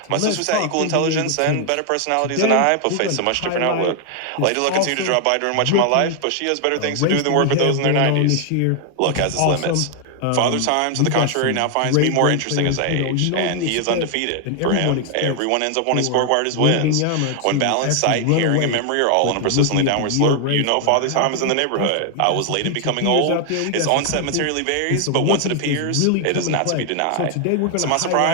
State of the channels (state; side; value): different; both; correlation 0.00